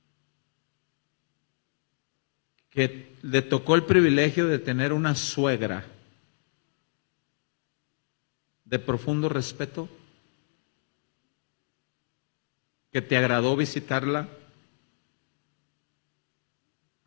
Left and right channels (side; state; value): right; silent; digital silence